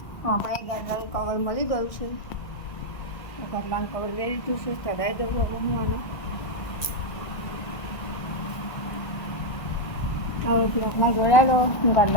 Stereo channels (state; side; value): late; right; 1.4 ms